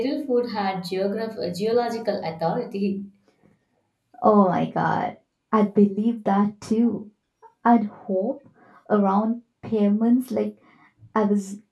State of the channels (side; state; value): both; identical; correlation 1.00